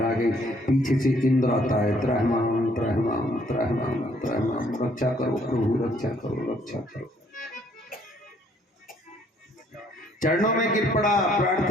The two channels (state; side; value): normal; both; correlation 0.64